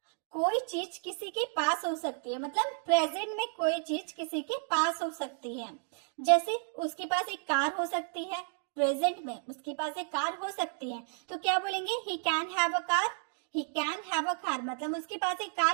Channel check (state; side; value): silent; left; 56 dB below the other